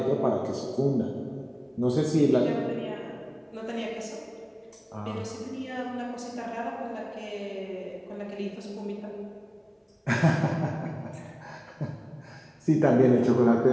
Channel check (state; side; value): identical; both; correlation 1.00